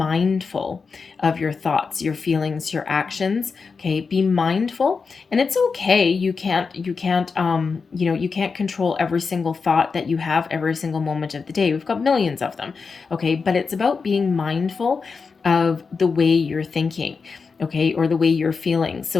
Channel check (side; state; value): right; quieter; 5.0 dB